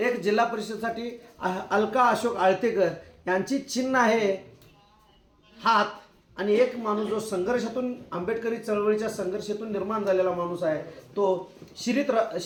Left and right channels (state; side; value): identical; both; correlation 1.00